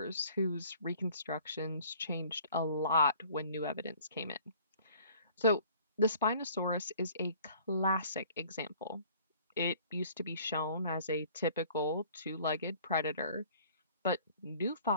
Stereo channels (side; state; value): both; inverted; correlation -0.53